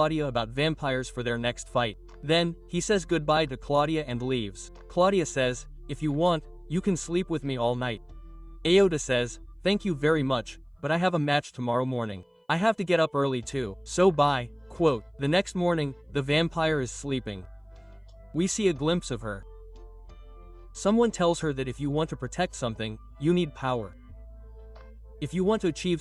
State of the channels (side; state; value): both; identical; correlation 1.00